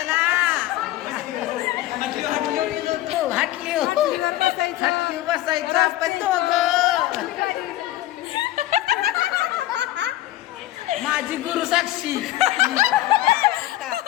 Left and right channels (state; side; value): quieter; right; 15.4 dB